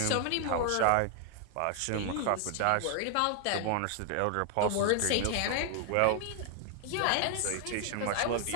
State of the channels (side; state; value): both; different; correlation 0.00